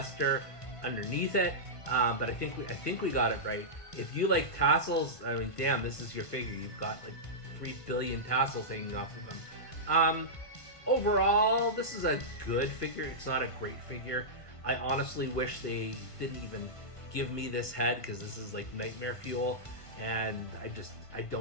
underneath it. But I think we got it right. If you like tassels, I mean, damn, this is your figure. You've got like 3 billion tassels hanging off of them. Overall, this is a good figure. It's not a great figure. I honestly wish they didn't even give me this head because this is like nightmare fuel, and I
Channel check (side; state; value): right; late; 1.5 ms